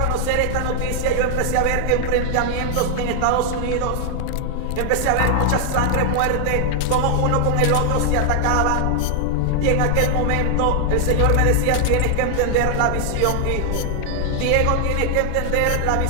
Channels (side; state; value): both; different; correlation 0.00